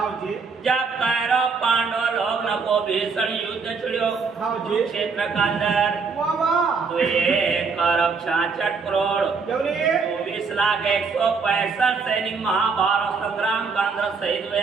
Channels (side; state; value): left; quieter; 5.0 dB